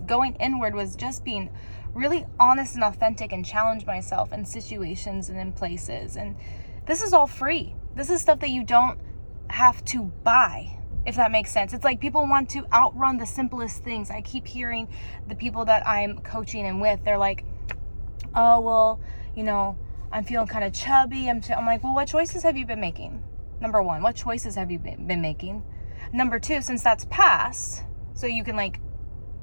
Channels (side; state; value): both; inverted; correlation -1.00